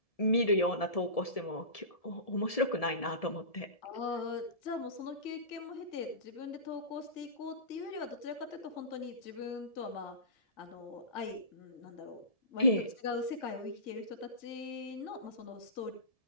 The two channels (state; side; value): late; right; 1.7 ms